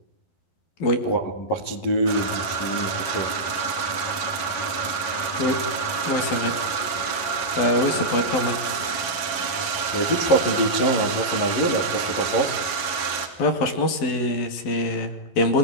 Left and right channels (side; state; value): right; late; 11 ms